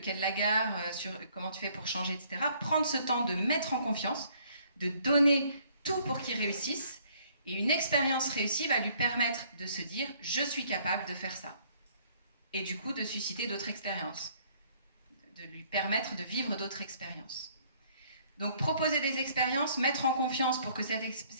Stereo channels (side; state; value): both; inverted; correlation -0.62